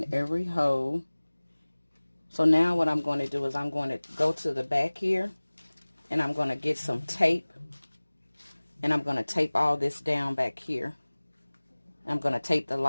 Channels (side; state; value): both; inverted; correlation -1.00